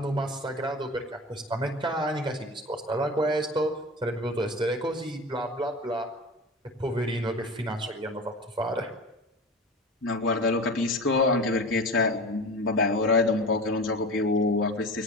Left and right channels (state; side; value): normal; both; correlation 0.32